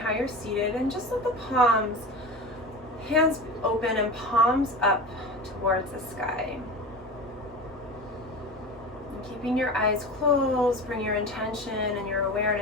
you're seated, and just let the palms, hands open and palms up towards the sky. And keeping your eyes closed, bring your intention and your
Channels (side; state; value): both; normal; correlation 0.30